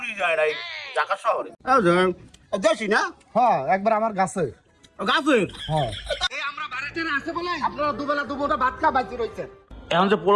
যায় নাই ঢাকা শহরে। দেশি না? হ্যাঁ, একবার আমার গাছে। গাছের? হ্যাঁ, এই আমরা বাড়িতে আছে বলে আপনারা দুবেলা দুপুরটা ভাত খা বাইতে রইছেন। এখন যে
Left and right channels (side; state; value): both; identical; correlation 1.00